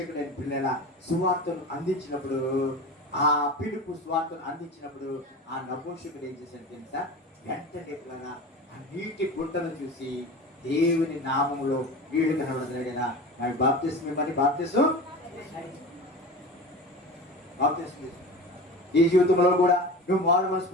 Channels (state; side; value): normal; both; correlation 0.32